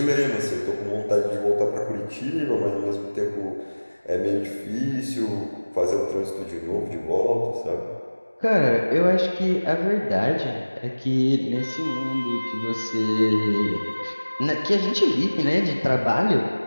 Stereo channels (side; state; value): both; inverted; correlation -1.00